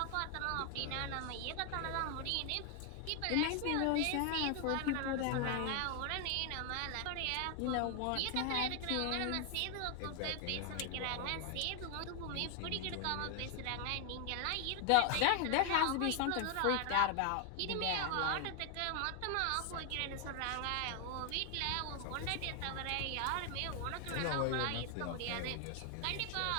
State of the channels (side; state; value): both; different; correlation 0.00